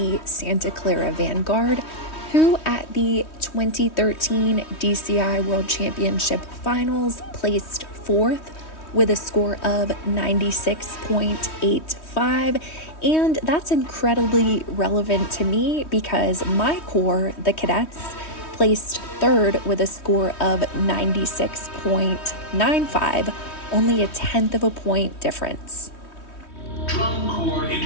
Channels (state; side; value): late; right; 3.2 ms